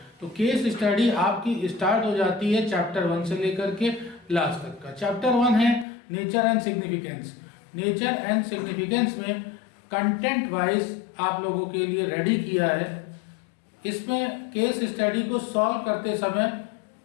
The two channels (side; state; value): right; drops out; at 5.9 s